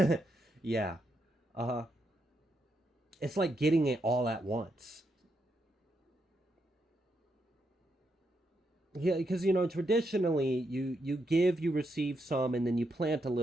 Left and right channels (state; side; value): normal; both; correlation 0.81